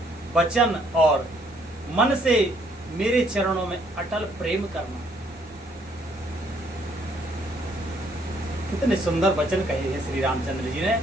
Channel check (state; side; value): normal; both; correlation 0.66